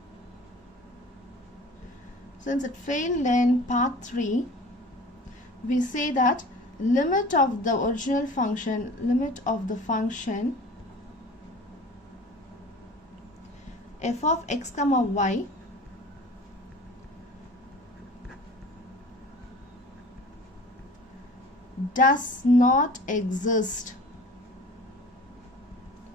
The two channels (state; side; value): normal; both; correlation 0.42